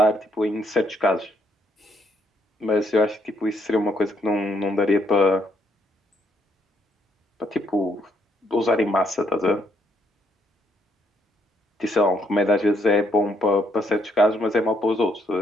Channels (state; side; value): normal; both; correlation 0.72